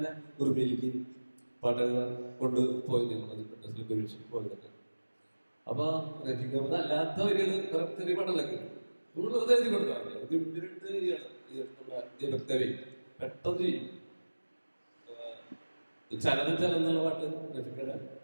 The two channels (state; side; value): inverted; both; correlation -1.00